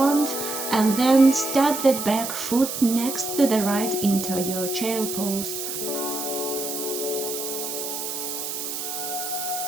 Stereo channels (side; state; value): right; noise; hiss, 5 dB below the sound